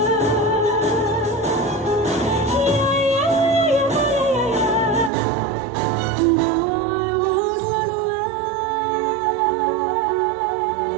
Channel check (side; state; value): left; drops out; at 5.1 s